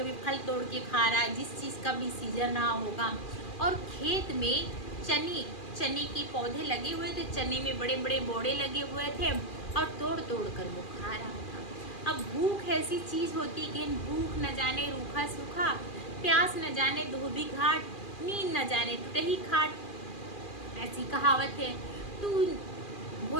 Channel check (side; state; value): right; late; 2.4 ms